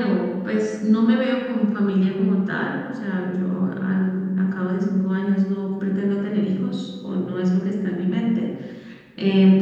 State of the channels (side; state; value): both; identical; correlation 1.00